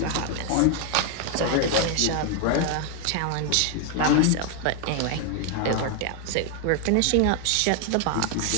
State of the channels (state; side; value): different; both; correlation 0.00